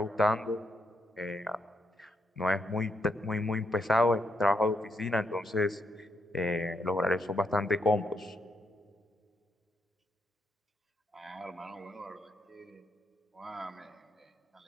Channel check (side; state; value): both; normal; correlation 0.78